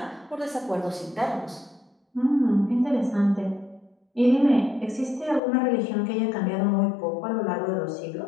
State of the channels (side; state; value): right; drops out; at 5.4 s